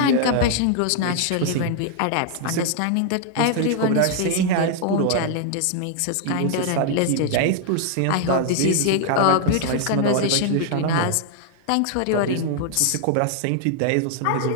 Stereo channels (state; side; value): different; both; correlation 0.00